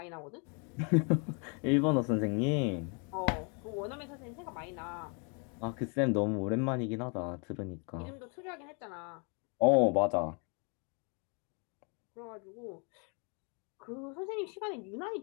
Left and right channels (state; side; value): quieter; right; 36.2 dB